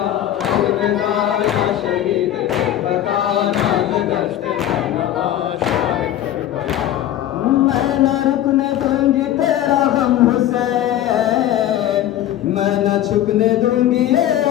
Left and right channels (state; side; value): quieter; right; 12.1 dB